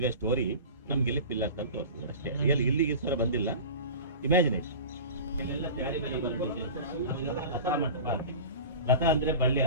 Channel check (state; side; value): inverted; both; correlation -0.35